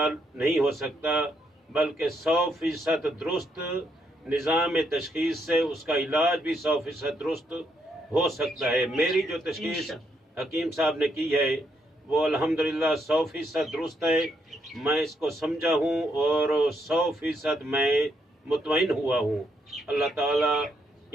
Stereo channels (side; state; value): both; normal; correlation 0.76